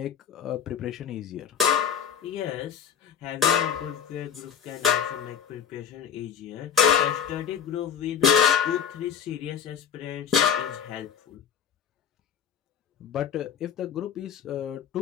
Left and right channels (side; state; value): right; quieter; 8.1 dB